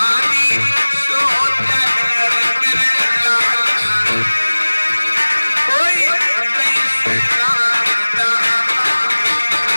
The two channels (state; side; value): inverted; both; correlation -1.00